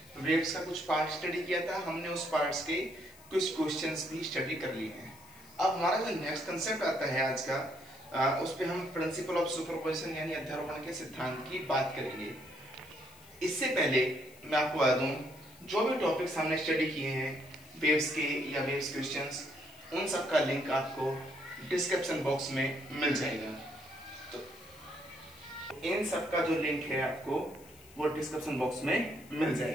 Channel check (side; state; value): left; noise; hiss, 23 dB below the sound